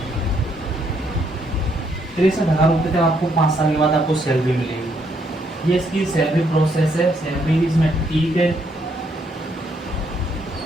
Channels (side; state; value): both; normal; correlation 0.72